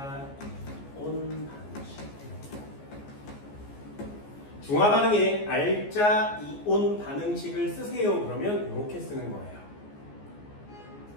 이온. 중화 반응에 알짜 이온 반응식을 쓰세요. 그러면 이렇게 쓰는 거예요.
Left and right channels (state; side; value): late; right; 14 ms